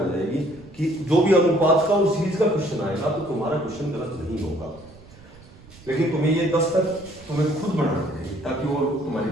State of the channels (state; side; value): noise; right; rumble, 22 dB below the sound